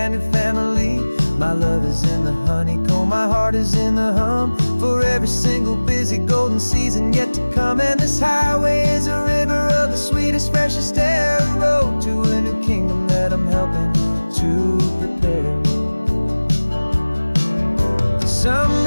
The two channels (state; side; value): inverted; both; correlation -1.00